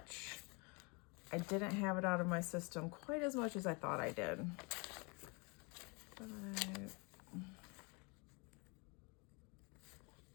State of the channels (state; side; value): quieter; right; 30.8 dB